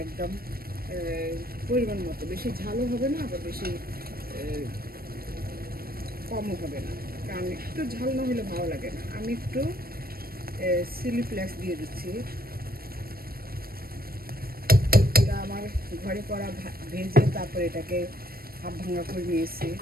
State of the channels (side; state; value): left; late; 0.44 ms